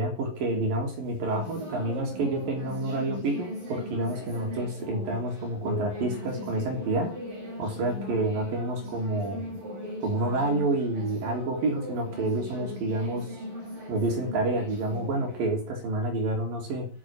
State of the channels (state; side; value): late; left; 11 ms